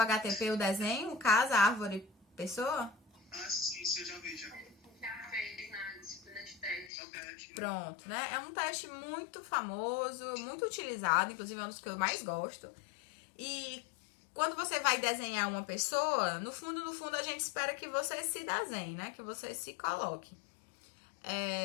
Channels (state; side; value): drops out; right; at 6.9 s